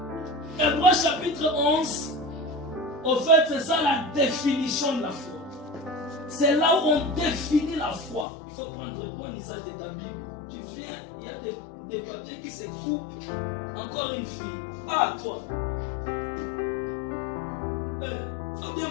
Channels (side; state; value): right; drops out; at 8.2 s